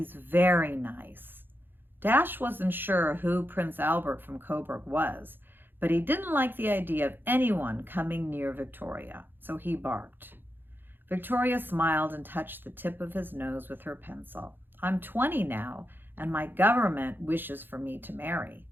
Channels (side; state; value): left; late; 0.098 ms